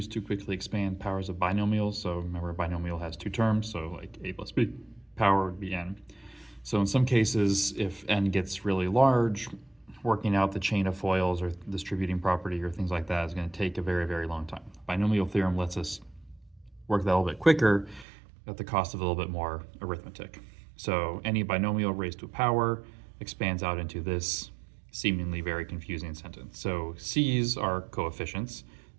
to quickly expand powers of binomials. So remember, a binomial has two terms, so like a plus b power would be n. So in some cases, if n gets really large, working out the chain of FOILs or distributing property or things like that is going to take a very, very long time. Binomial theorem lets us work that a little bit quicker at the cost of a little bit more arithmetic. So any binomial raised to a power expands out into this seemingly very confusing sentence. So C's are coefficients.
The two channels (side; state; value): left; drops out; at 18.1 s